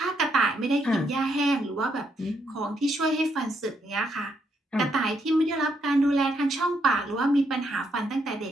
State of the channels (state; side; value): normal; both; correlation 0.76